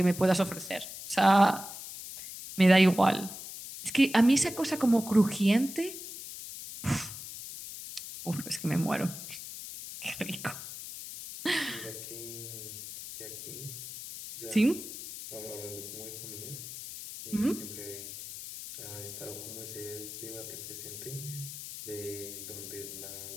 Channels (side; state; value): left; noise; hiss, 10 dB below the sound